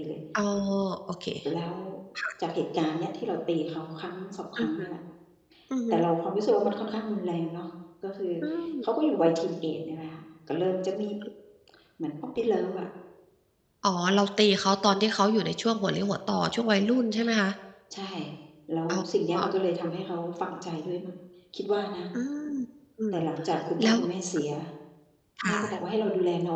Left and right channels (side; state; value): both; identical; correlation 1.00